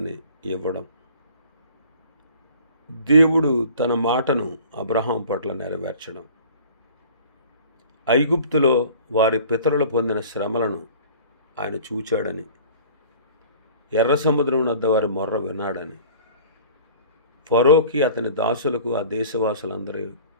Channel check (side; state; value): both; inverted; correlation -0.47